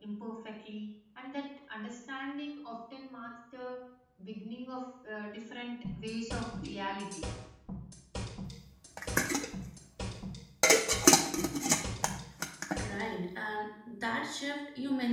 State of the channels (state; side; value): identical; both; correlation 1.00